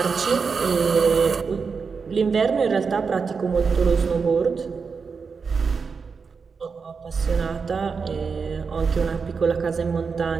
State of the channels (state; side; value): quieter; left; 5.3 dB